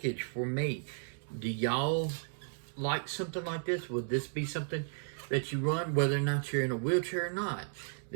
for me. Do y'all like something like this? Would this be something that you run, whether or not you're in a wheelchair or not?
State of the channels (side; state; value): left; silent; digital silence